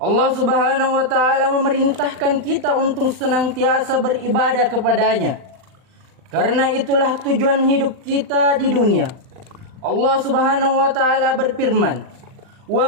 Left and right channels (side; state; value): left; late; 39 ms